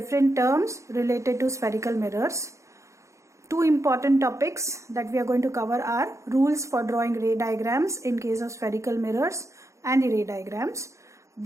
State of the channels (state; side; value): late; left; 0.15 ms